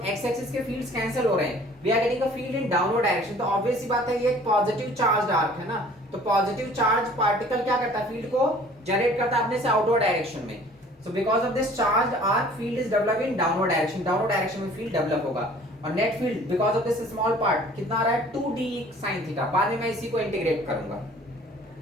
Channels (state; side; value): normal; both; correlation 0.51